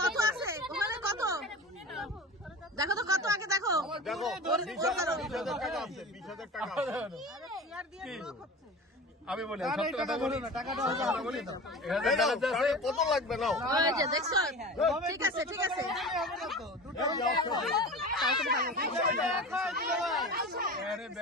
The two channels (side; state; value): both; normal; correlation 0.33